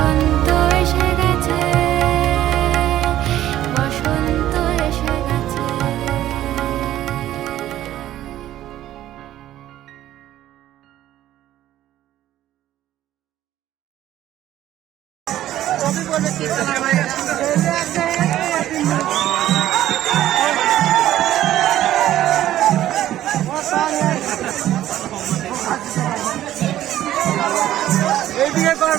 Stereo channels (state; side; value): quieter; left; 13.1 dB